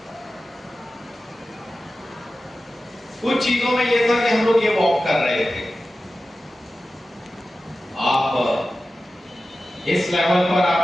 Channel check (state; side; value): normal; both; correlation 0.94